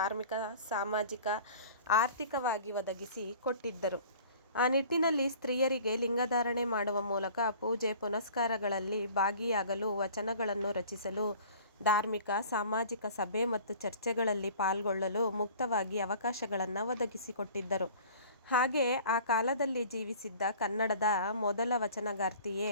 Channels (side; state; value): both; inverted; correlation -0.47